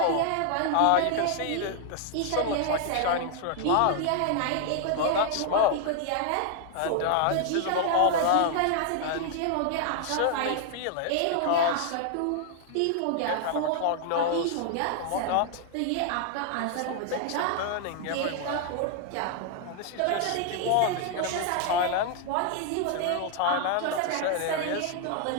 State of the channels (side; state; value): both; different; correlation 0.00